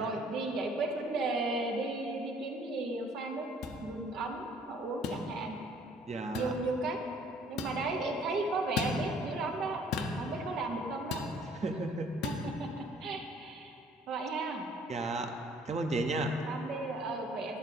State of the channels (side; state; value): both; normal; correlation 0.58